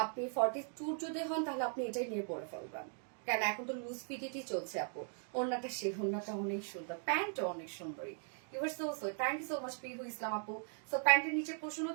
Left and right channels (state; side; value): silent; left; 52 dB below the other